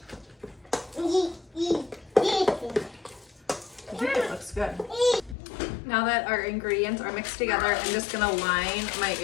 I think it looks good. Now that our ingredients are mixed together, I'm just gonna line my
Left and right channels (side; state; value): right; drops out; at 5.4 s